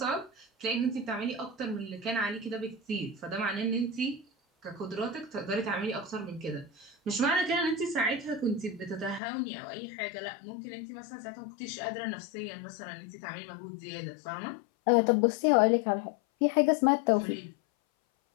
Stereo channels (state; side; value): drops out; right; at 9.2 s